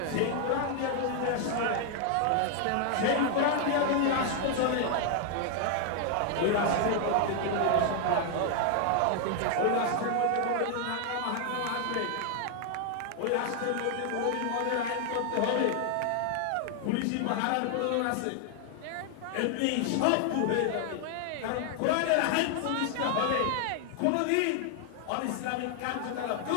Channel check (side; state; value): both; different; correlation 0.00